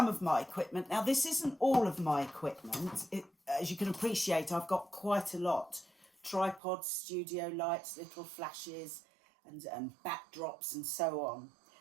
of my equipment, now this isn't all of my equipment. As you can appreciate, I've got quite a lot. Tripods, studio lights, little flashes and backdrops and so on.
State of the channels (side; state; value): left; drops out; at 6.6 s